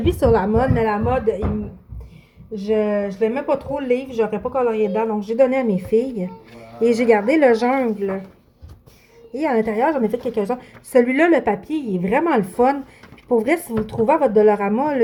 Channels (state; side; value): identical; both; correlation 1.00